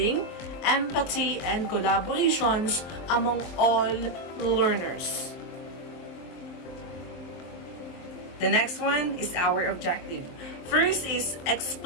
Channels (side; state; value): right; late; 23 ms